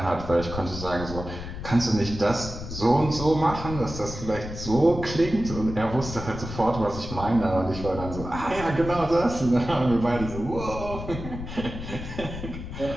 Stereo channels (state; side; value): noise; left; rumble, 9 dB below the sound